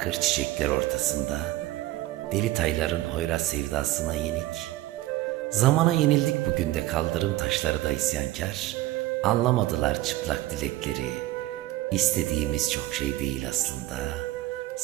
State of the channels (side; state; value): left; quieter; 16.5 dB